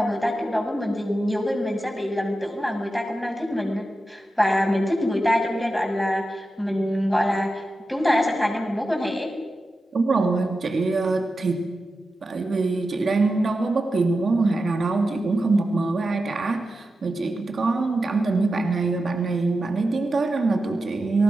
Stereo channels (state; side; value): normal; both; correlation 0.91